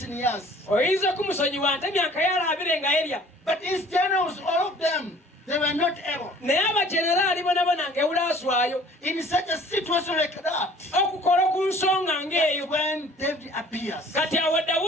in years. Oyinza okumusonyiwa nti emyaka yalaabire nga erya. But his generals, all of them, they were not able. Naye abajeneraali bonna nga ewulaaswayo In such a situation like that, okukola ku nsonga ng'eyo. when David appears, Kati awo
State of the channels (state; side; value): normal; both; correlation 0.52